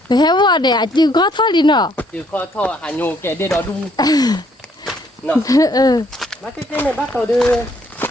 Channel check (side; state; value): both; normal; correlation 0.67